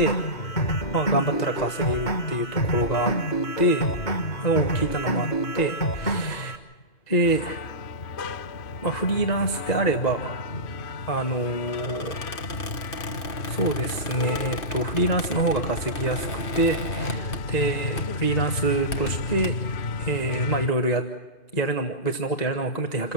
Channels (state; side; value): late; right; 2.6 ms